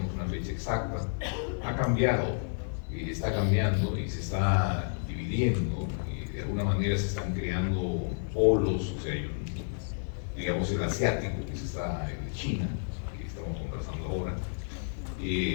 una fecha exacta, ha cambiado, está cambiando y se está dividiendo, y de alguna manera se están creando polos, o sea, digamos el asiático, que el China, que estamos conversando ahora,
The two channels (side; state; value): right; silent; digital silence